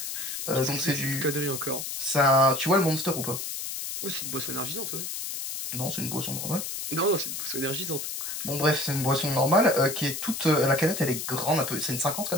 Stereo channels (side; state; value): left; noise; hiss, 5 dB below the sound